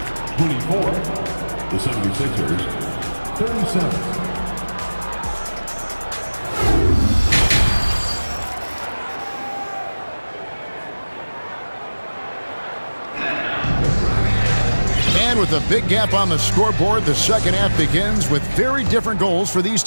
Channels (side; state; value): both; inverted; correlation -1.00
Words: 24. The 76ers, 37. And with a big gap on the scoreboard, the second half begins with very different goals for these